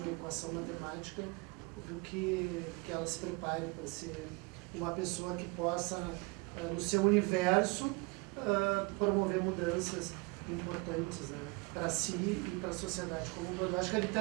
equação matemática, do que ela se prepare para ser uma pessoa que possa, no seu universo, promover mudanças importantes, né, para si e para a sociedade como um todo. Eu acho que a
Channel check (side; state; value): left; quieter; 27.8 dB